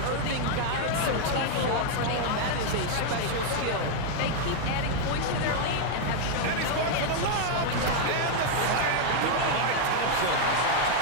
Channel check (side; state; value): both; different; correlation 0.00